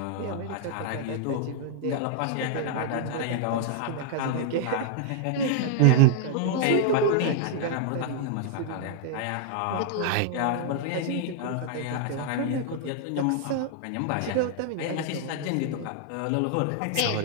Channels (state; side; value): different; both; correlation -0.01